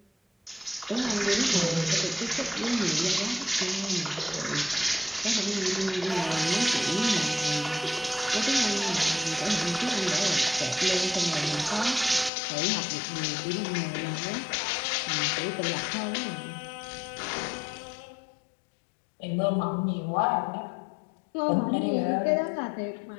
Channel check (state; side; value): drops out; right; at 12.3 s